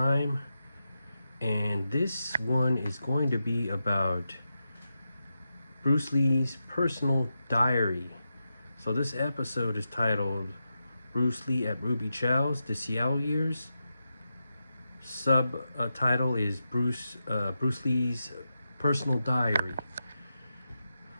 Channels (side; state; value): both; inverted; correlation -0.89